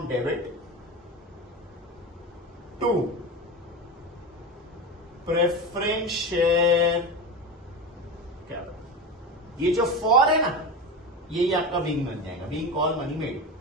debit to preference share capital. ये जो फॉर है ना, यही आपका विंग बन जाएगा, विंग कॉल मनी मेड,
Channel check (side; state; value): both; normal; correlation 0.24